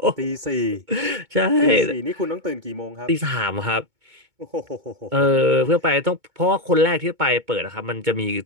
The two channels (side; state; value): left; late; 2.2 ms